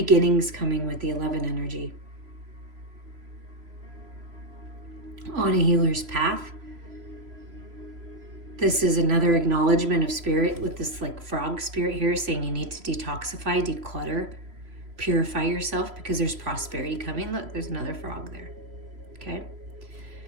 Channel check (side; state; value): left; late; 3.0 ms